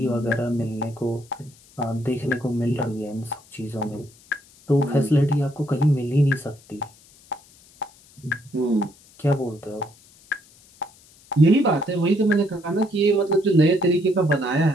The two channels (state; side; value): noise; left; hiss, 27 dB below the sound